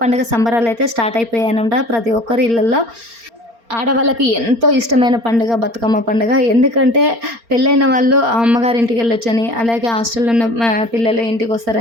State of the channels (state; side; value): late; left; 4.3 ms